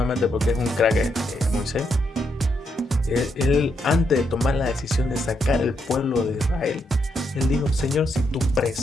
porque es un crack Moisés. Él, antes de tomar la decisión de sacar el pueblo de Israel, él dijo, Señor, si tu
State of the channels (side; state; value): both; normal; correlation 0.79